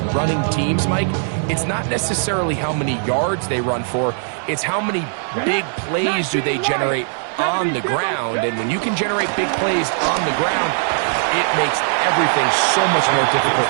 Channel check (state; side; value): silent; left; 66 dB below the other